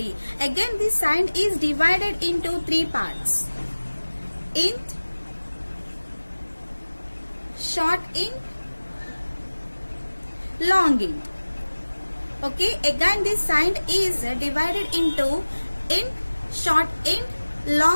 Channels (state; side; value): inverted; both; correlation -1.00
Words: Again, this signed is divided into three parts: int, short int, long int. Okay, again this signed is divided into int, short int,